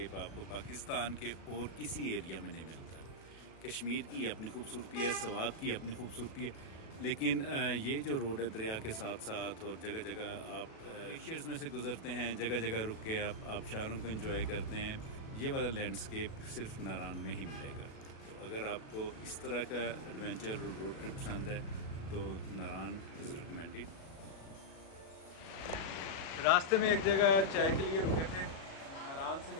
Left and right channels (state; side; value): late; right; 37 ms